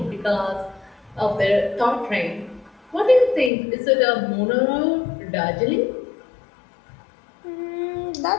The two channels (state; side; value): drops out; right; at 3.5 s